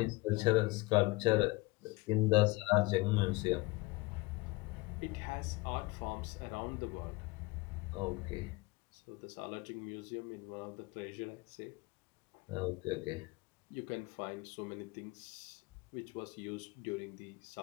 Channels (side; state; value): right; quieter; 23.0 dB